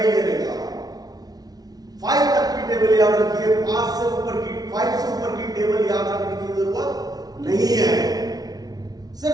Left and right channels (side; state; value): left; late; 0.19 ms